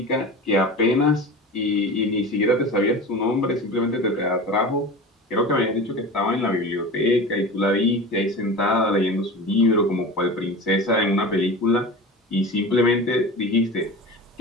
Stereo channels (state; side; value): normal; both; correlation 0.32